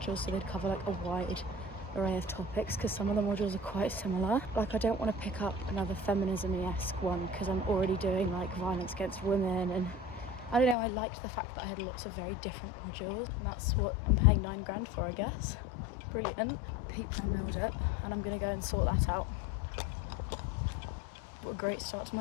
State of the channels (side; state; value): right; drops out; at 10.8 s